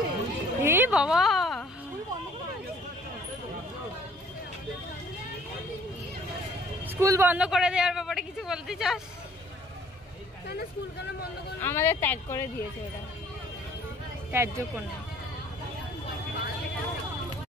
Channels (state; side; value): normal; both; correlation 0.57